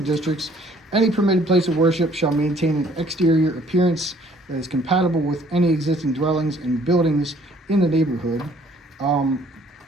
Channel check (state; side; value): normal; both; correlation 0.59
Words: districts, any permitted place of worship shall maintain an exterior appearance that is compatible with any existing dwellings and buildings in the neighborhood.